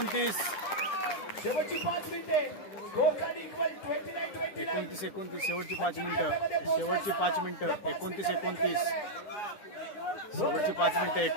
शेवटची 5 मिनिटे. Score card equal 29-29. 29-29, शेवटची 5 मिनिटं. शेवटची 5 मिनिटं 29-29. शेवटची 5 मिनिटं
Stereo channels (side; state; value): right; late; 10 ms